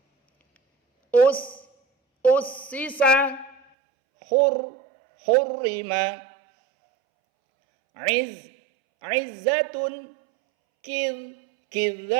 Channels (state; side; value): drops out; left; at 3.6 s